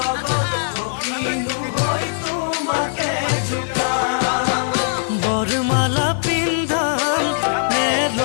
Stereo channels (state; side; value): silent; right; digital silence